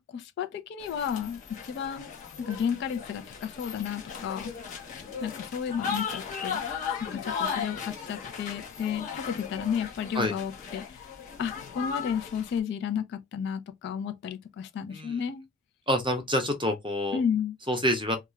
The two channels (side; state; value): right; quieter; 4.7 dB